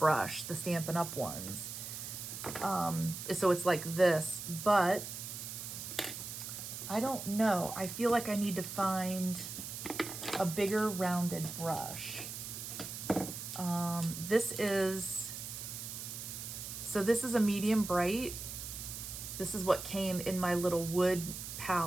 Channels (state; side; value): noise; right; hiss, 8 dB below the sound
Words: the Stampin' Up! Ones. So it's like this, but I don't know. I feel like I need to find a bigger rounded brush. This is a medium bright. This is what came in my little wood